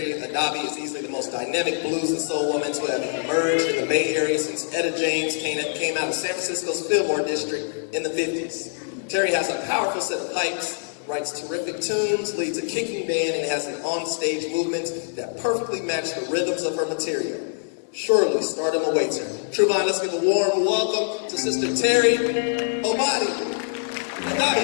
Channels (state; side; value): silent; right; digital silence